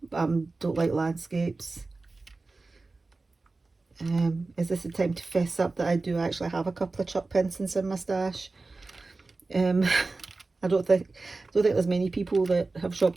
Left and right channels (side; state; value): left; quieter; 3.5 dB